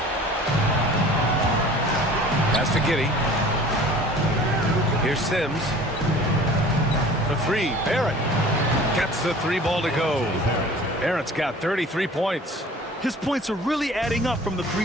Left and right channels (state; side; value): normal; both; correlation 0.46